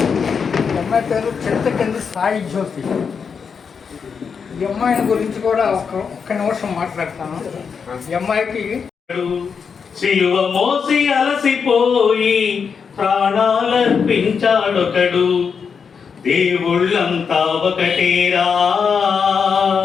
అమ్మాయి పేరు చింతకింది సాయి జ్యోతి. ఈ అమ్మాయిని గురించి కూడా ఒక్క నిమిషం మాట్లాడతాను. ఈ అమ్మాయికి సిలువ మోసి అలసిపోయి ప్రాణాలర్పించాడొకడు, దేవుళ్ళంతా ఒకటేరా,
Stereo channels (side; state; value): right; quieter; 6.1 dB